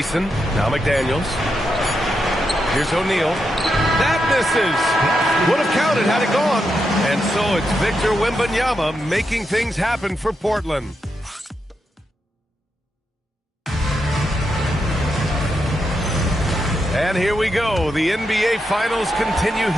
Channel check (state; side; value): normal; both; correlation 0.84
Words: Now McDaniels. Here's O'Neal. That misses. Would have counted had it gone. And so it's Victor Wembanyama making things happen for Portland. And here we go. The NBA Finals continue